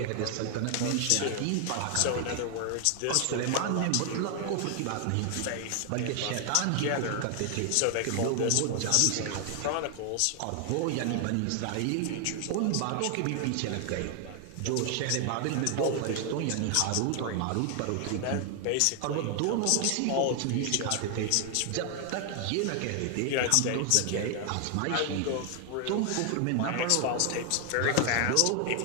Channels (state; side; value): different; both; correlation 0.00